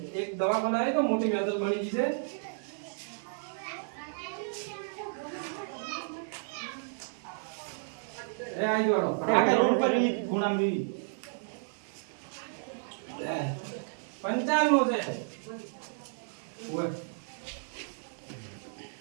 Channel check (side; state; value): left; silent; 56 dB below the other